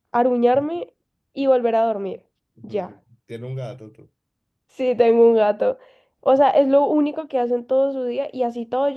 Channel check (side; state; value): both; identical; correlation 1.00